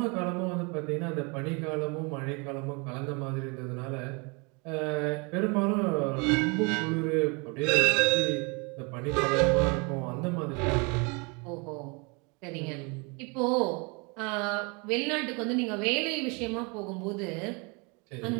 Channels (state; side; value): quieter; left; 31.0 dB